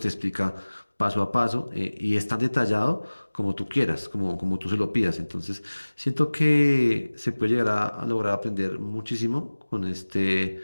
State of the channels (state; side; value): inverted; both; correlation -1.00